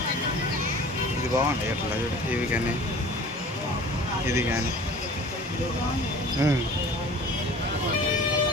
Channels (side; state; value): both; normal; correlation 0.44